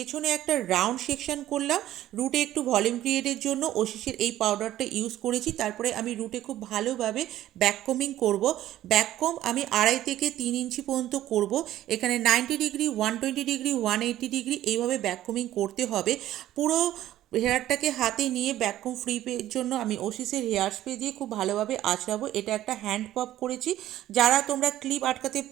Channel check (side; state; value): left; quieter; 13.6 dB